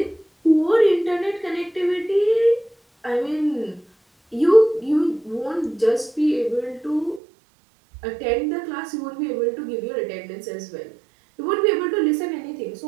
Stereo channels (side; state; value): left; drops out; at 7.2 s